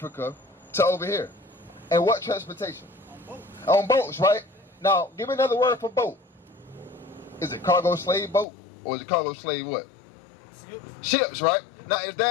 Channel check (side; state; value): right; drops out; at 8.5 s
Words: to over here? And what transportation? On boats, right? Now, give me another word for boat. Is it cargo slave boat? Or is it cargo slave what? Ships, right? Now, is